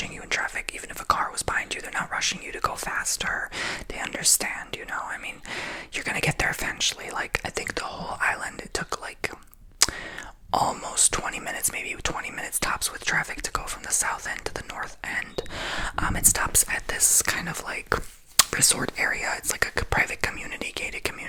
you in traffic. Even if a car was behind you, they're not rushing you to go faster. They understand, you know. I mean, you're gonna get there eventually. Like I think the whole island, it took like almost 20 minutes, maybe 20 minutes tops with traffic to go from the south end to the north end. It stops at this kind of like resort area. It's like a private community, gated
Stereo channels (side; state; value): both; identical; correlation 1.00